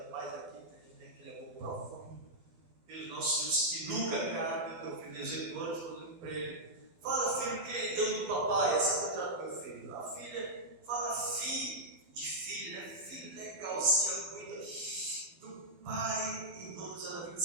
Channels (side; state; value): left; late; 12 ms